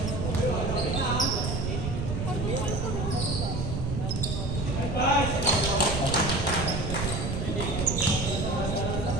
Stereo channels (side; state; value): right; noise; rumble, 2 dB below the sound